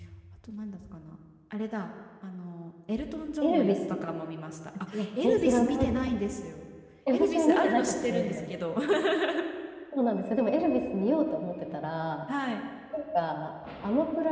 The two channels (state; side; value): identical; both; correlation 1.00